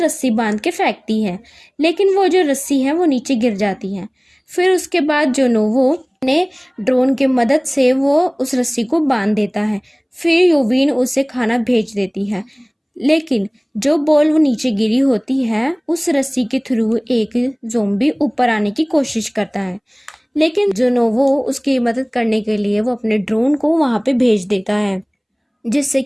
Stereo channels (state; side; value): identical; both; correlation 1.00